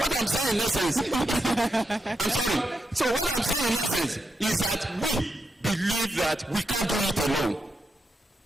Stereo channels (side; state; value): both; normal; correlation 0.85